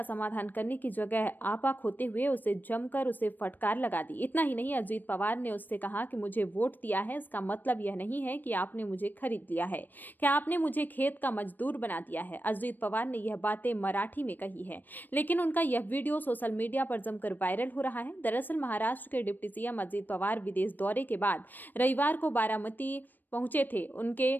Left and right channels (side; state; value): right; late; 0.090 ms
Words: समाधान करने की जगह आपा खोते हुए उसे जमकर उसे फटकार लगा दी। इतना ही नहीं, अजीत पवार ने उससे कहा कि मुझे वोट दिया है, इसका मतलब यह नहीं है कि आपने मुझे खरीद लिया है, कि आपने मुझे खेत का मजदूर बना दिया है। अजीत पवार ने यह बातें मराठी में कही है, लेकिन उनका यह वीडियो सोशल मीडिया पर जमकर वायरल हो रहा है। दरअसल महाराष्ट्र के डिप्टी सीएम अजीत पवार विदेश दौरे के बाद रविवार को बारामती पहुंचे थे। उनके